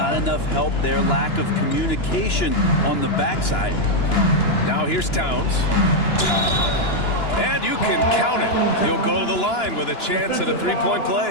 enough help there. Lack of communication on the backside. Now here's Towns. And you can count it. He'll go to the line with a chance at a three-point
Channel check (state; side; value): late; right; 2.9 ms